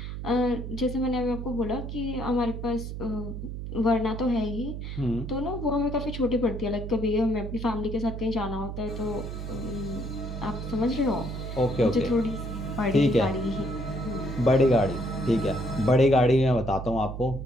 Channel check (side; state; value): right; noise; hum, 7 dB below the sound